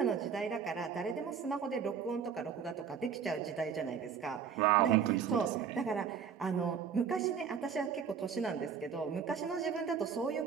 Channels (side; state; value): left; quieter; 7.0 dB